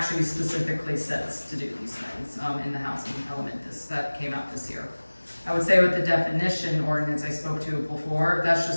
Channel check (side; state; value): both; inverted; correlation -1.00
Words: specifically says to do these things in the housing element that came out this year. I would say with the definition ordinance I spoke to before, that's